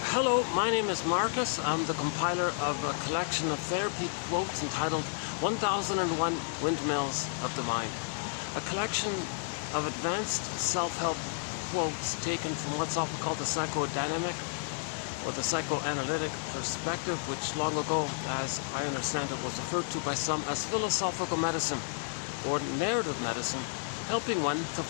Hello, my name is Marcus. I'm the compiler of a collection of therapy quotes entitled 1001 Windmills of the Mind. A collection of advanced self-help quotes taken from what's often called the psychodynamic or the psychoanalytic perspective, which long ago, as I understand it, was referred to by some as philosophical medicine or narrative medicine, helping one to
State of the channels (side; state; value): right; silent; digital silence